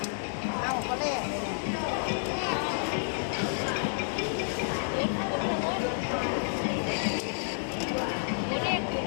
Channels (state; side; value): silent; right; 58 dB below the other